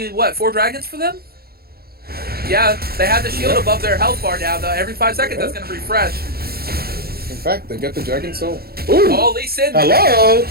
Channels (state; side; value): late; left; 0.45 ms